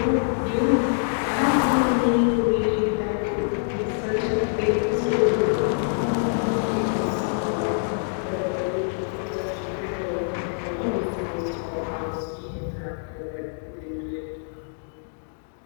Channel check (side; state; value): right; silent; digital silence